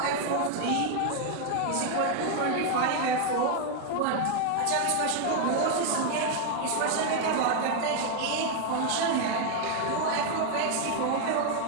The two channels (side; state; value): both; different; correlation 0.00